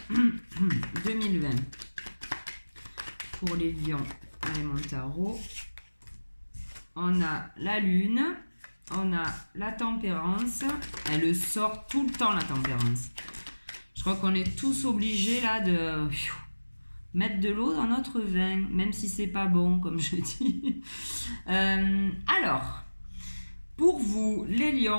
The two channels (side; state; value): both; inverted; correlation -1.00